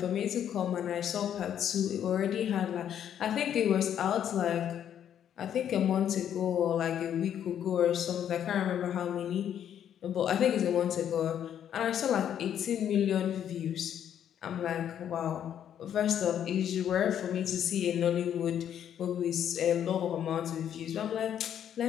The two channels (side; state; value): right; quieter; 9.7 dB